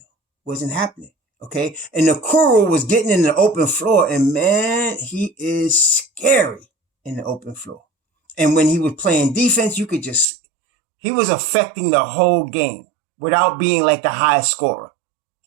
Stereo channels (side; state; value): left; drops out; at 10.2 s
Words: Okay. And Okoro was getting in the open floor, and man, he is scary in the open floor. And when he was playing defense, he was affecting the whole game without being like the highest scorer.